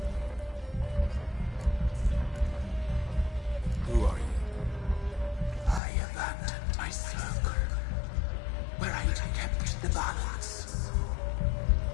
Who are you? I abandoned my circle, where I kept the balance.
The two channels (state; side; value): drops out; right; at 5.8 s